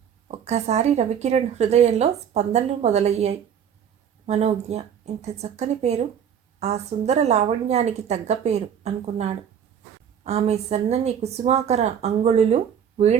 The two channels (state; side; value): quieter; left; 8.4 dB